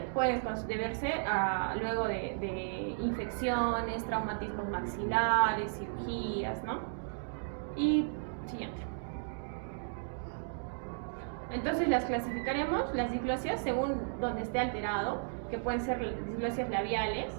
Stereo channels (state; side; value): silent; left; digital silence